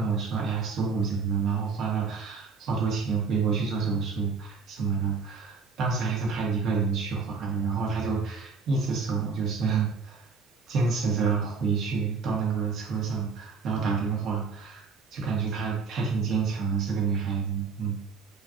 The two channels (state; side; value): quieter; left; 5.0 dB